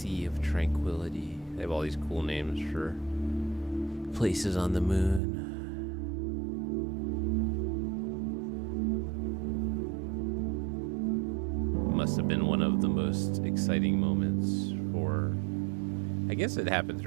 of Tranquility. They have all these cool names for places on the moon. Must have been one of the most exciting moments for, I guess it happened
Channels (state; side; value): drops out; left; at 5.2 s